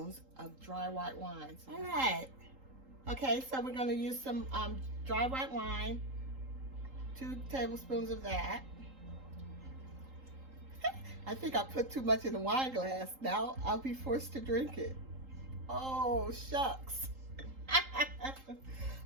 of dry white wine. All right. Okay, so we're going to use some dry white wine, 2 tablespoons of that. I think I put too much in the wine glass. Now I'll be forced to drink it. Oh, shucks.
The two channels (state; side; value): late; left; 3.8 ms